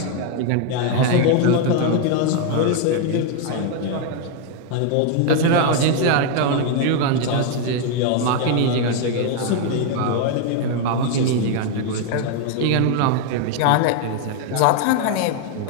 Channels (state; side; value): different; both; correlation 0.00